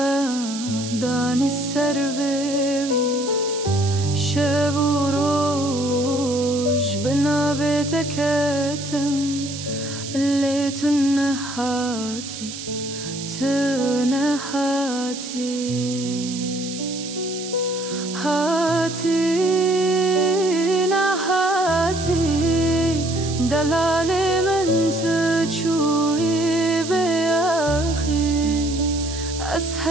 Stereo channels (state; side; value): noise; right; hiss, 10 dB below the sound